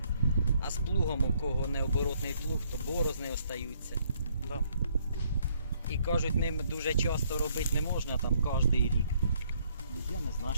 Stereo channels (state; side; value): inverted; both; correlation -0.67